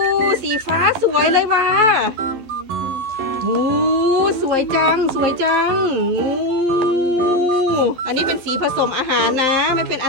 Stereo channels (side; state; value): left; late; 11 ms